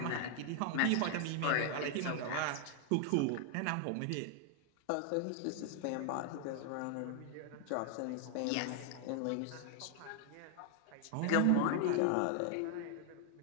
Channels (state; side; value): different; both; correlation 0.00